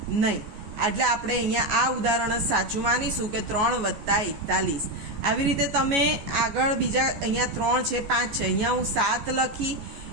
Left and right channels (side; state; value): left; late; 14 ms